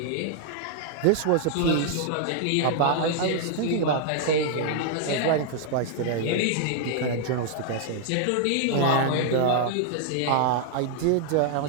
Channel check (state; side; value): different; both; correlation 0.00